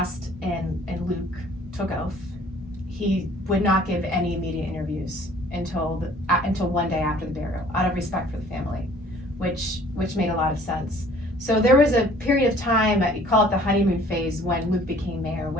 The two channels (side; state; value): both; normal; correlation 0.54